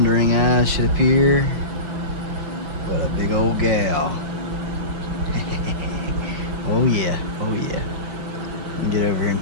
eyes should appear but a big old gal. Oh yeah, oh yeah. Get over here and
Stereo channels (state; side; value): late; left; 5.6 ms